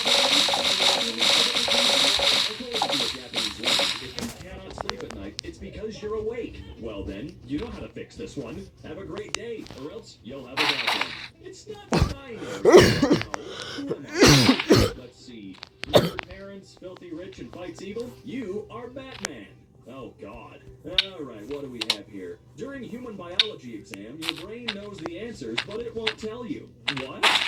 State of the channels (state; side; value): identical; both; correlation 1.00